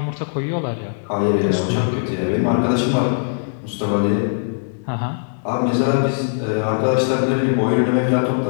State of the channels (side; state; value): right; silent; digital silence